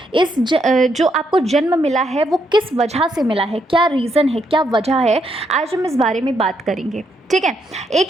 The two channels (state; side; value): normal; both; correlation 0.77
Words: जो आपको जन्म मिला है वो किस वजह से मिला है, क्या रीज़न है, क्या वजह है, आज हम इस बारे में बात करेंगे, ठीक है?